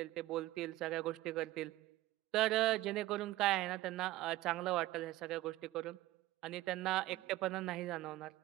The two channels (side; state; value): left; quieter; 16.9 dB